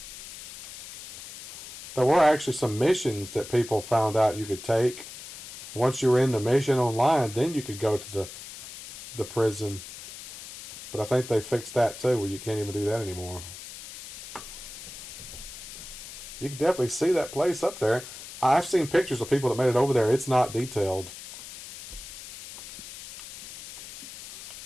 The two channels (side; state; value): left; noise; hiss, 13 dB below the sound